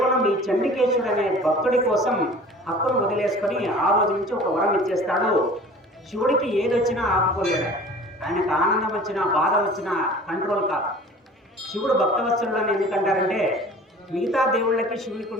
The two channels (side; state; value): both; normal; correlation 0.44